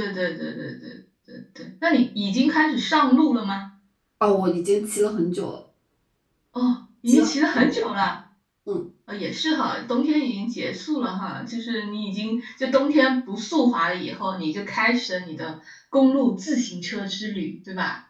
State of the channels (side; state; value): both; identical; correlation 1.00